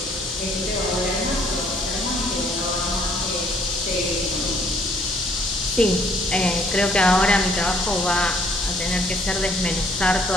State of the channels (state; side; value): normal; both; correlation 0.64